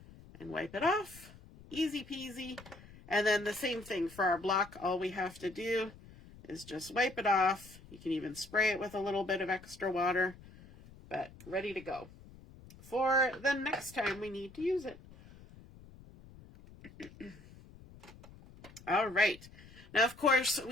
and wipe it off. Easy peasy. And then the same thing for our block. All we have to do is just wipe it off. You can even spray it with a little bit of extra water, but ready to go. for the next time we need to use it. All right. Now, of course,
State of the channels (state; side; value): noise; left; rumble, 20 dB below the sound